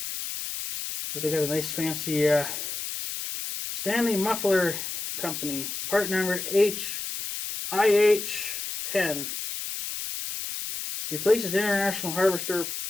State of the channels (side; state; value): left; noise; hiss, 6 dB below the sound